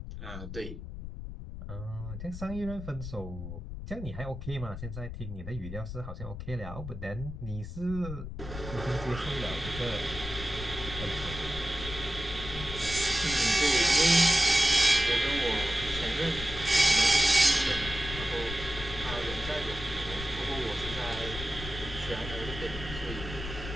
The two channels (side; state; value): left; noise; rumble, 9 dB below the sound